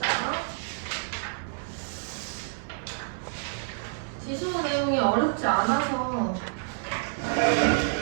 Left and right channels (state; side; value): silent; left; 59 dB below the other